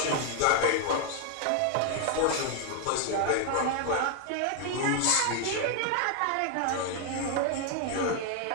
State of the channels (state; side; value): different; both; correlation 0.00